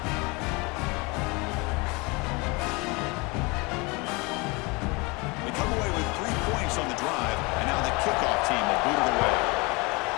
They come away with 3 points on the drive, and now the kickoff team will boot it away.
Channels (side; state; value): right; quieter; 26.8 dB